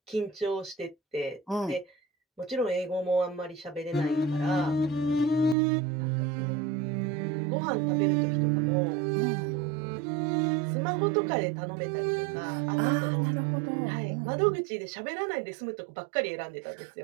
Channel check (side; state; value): left; drops out; at 5.6 s